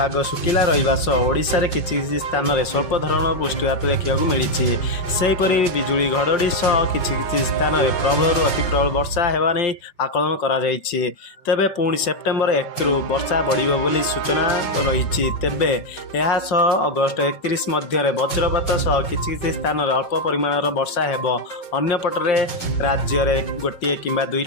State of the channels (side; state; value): right; late; 5.4 ms